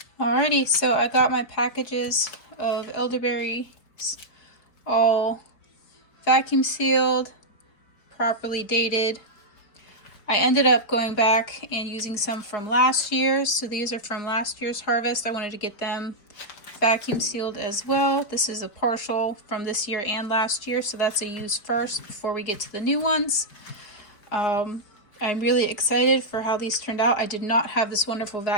Alrighty, so I got my packages of elderberries all vacuum sealed, properly dated. I ended up going back and using some from last year. So these are from last year's harvest. I wanted to get them vacuum sealed as well. This is a partial from this year and last year. So that's a use first before we get to the new ones. I'm really excited for how these turned out. I did not have this wonderful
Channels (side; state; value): right; late; 4.8 ms